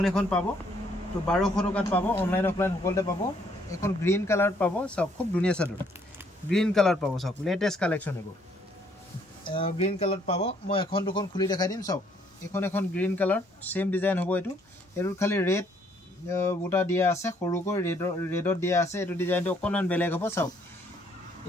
এখন পাব তো 1200 টকাত পাব অনলাইন অফলাইন সকলোতে পাব এখন গ্ৰীণ কালাৰত পাব চাওক খুব ধুনীয়া চাদৰ গ্ৰীণ কালাৰ পাব চাওক লেটেষ্ট কালেকশ্যন এবোৰ গ্ৰীণ কালাৰত পাব মই এখন দুখন খুলি দেখাই দিম চাওক এখন গ্ৰীণ কালাৰ সেম ডিজাইন হ'ব এটো খালি ৰেড বুটা দিয়া আছে সৰুকৈ ৰেডত দিয়া আছে এটো ডিজাইনটো অকণমান বেলেগ হ'ব চাওক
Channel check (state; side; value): normal; both; correlation 0.66